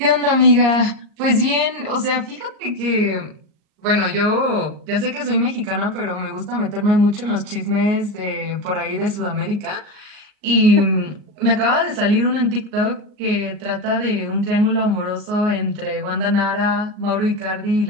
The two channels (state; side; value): late; left; 38 ms